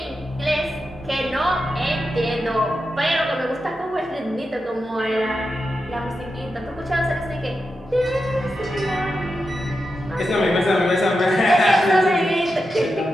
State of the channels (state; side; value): normal; both; correlation 0.89